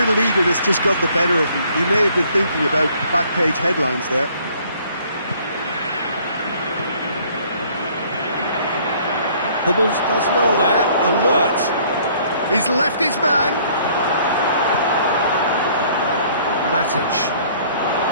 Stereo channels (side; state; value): both; inverted; correlation -0.59